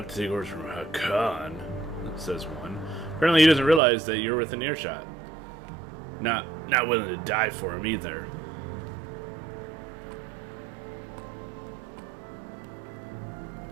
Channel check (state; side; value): drops out; left; at 3.8 s